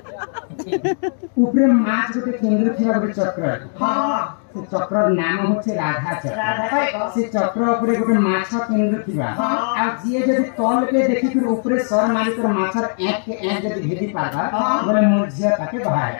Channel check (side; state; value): right; silent; digital silence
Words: ऊपरे माछ गोटे केंद्र थिबा गोटे चक्र हां से चक्र नाम होचे राधा चक्र से चक्र ऊपरे गोटे माछ केंद्र थिबा आ जिए जदी तल के देखि फिर ऊपरे सर मारी कर माछर एक के एक जदी भेदी पाबा बोले मोरजिया ताके बाहर